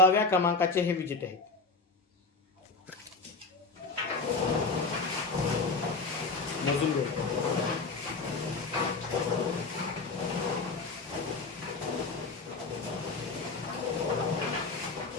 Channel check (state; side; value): quieter; right; 3.9 dB